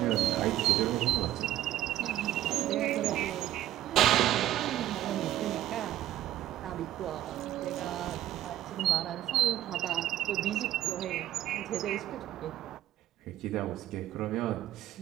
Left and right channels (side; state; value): left; quieter; 13.2 dB